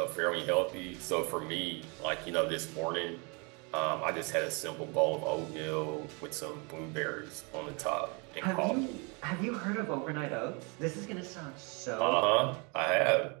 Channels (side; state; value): left; quieter; 31.9 dB